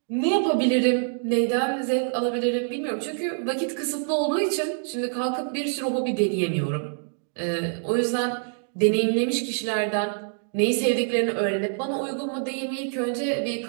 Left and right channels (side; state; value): left; silent; digital silence